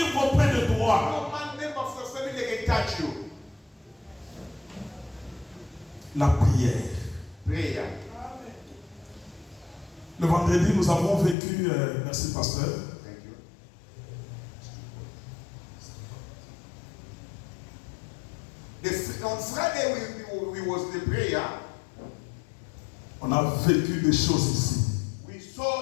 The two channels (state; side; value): drops out; right; at 11.4 s